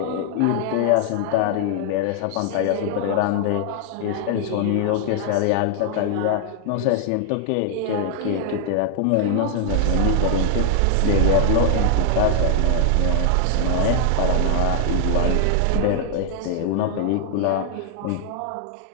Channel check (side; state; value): both; different; correlation 0.00